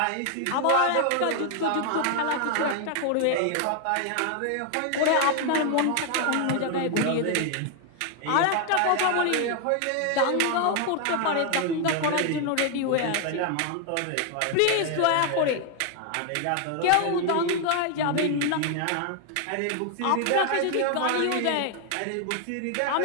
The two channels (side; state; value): both; different; correlation 0.00